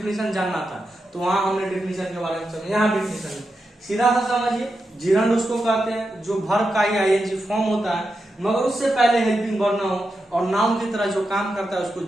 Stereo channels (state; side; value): normal; both; correlation 0.88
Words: जानना था तो वहां हमने डेफिनेशन के बारे में समझा, यहाँ डेफिनेशन सीधा सा समझिए। जिरंड उसको कहते हैं जो वर्ब का ही आईएनजी फॉर्म होता है मगर उससे पहले हेल्पिंग वर्ब ना हो और नाउन की तरह जो काम करता है उसको